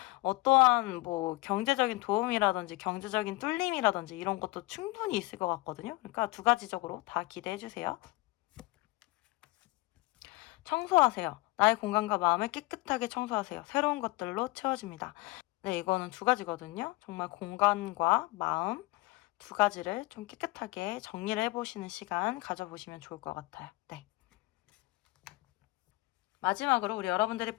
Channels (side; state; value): right; quieter; 21.5 dB